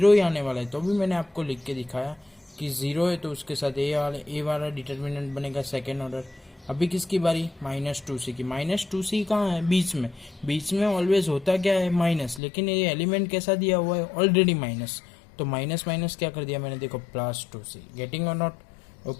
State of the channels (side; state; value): right; drops out; at 12.4 s